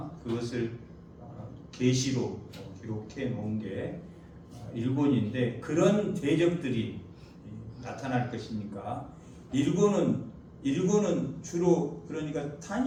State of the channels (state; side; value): identical; both; correlation 1.00